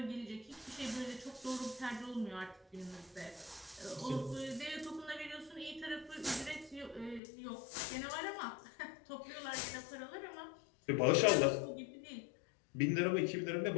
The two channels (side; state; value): right; drops out; at 7.2 s